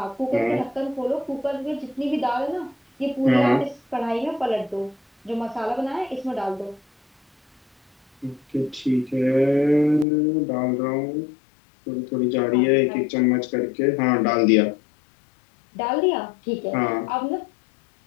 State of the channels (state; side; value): drops out; right; at 10.1 s